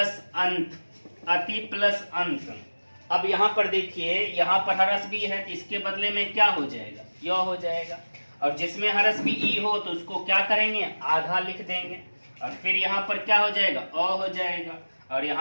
अंत, अति प्लस अंत। अब यहाँ पर देखिए, यहाँ पर हरस भी है तो इसके बदले में क्या हो जाएगा, यो हो जाएगा। और जिसमें हरस भी ई हो तो उसको क्या करेंगे, आधा लिख देंगे। और फिर यहाँ पर क्या हो जाएगा, अ हो जाएगा। और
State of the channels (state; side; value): inverted; both; correlation -1.00